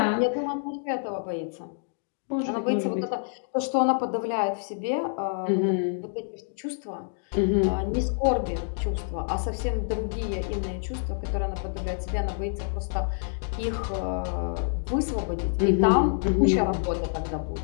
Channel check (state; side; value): silent; right; 60 dB below the other